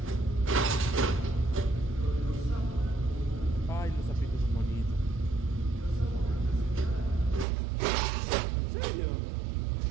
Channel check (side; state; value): left; drops out; at 7.5 s